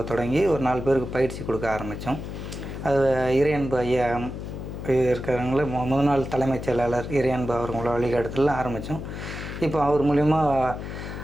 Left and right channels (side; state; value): left; noise; hum, 8 dB below the sound